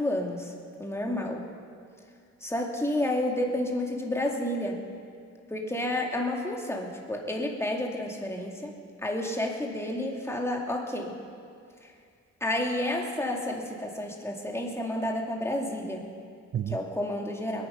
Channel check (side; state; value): both; normal; correlation 0.59